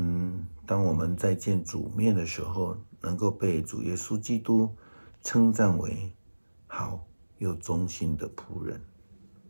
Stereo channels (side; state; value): both; inverted; correlation -1.00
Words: 当我们在见主面的时候，能够被主耶稣基督称赞为好又忠心的仆人。